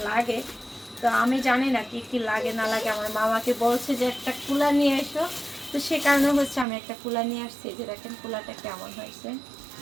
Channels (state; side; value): drops out; left; at 6.7 s